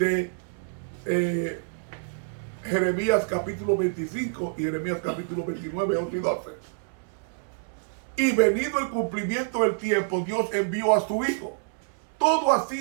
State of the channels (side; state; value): left; silent; 60 dB below the other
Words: Jeremías capítulo 25 y Jeremías capítulo 29, 11 y 12. Y venido el cumplimiento del tiempo, Dios envió a su Hijo. Todo ha